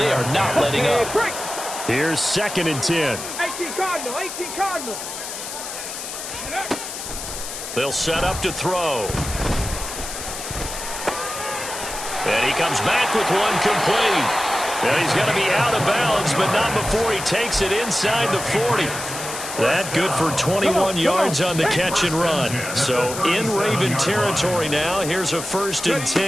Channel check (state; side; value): noise; left; hiss, 8 dB below the sound